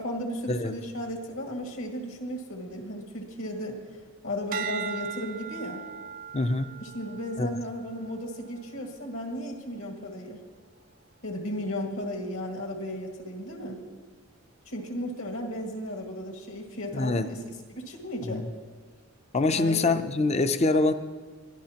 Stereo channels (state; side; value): normal; both; correlation 0.42